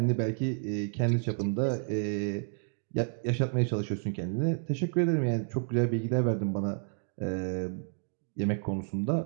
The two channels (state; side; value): silent; left; 57 dB below the other